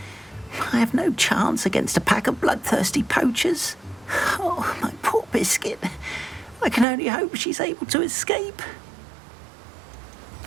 I have no chance against a pack of bloodthirsty poachers. Oh, my poor Biscuit. I can only hope she's able to escape.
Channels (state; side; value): drops out; left; at 6.9 s